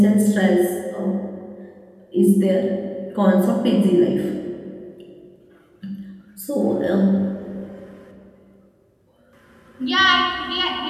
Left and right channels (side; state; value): both; identical; correlation 1.00